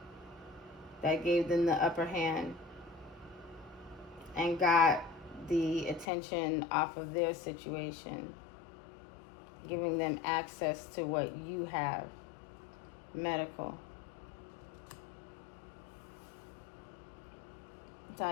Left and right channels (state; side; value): drops out; right; at 6.1 s